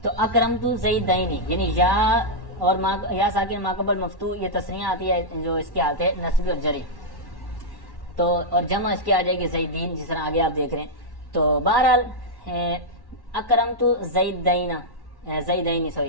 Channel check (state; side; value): late; left; 1.1 ms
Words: تو اکرمت زیدین یعنی یا اور یا ساکن ماقبل مفتوح یہ تسنیہ آتی ہے جو اس کی حالت ہے نصبی اور جری. تو اور جمع اس کی آ جائے گی زیدین، جس طرح آگے آپ دیکھ رہے ہیں. تو بہرحال اکرمت زیدین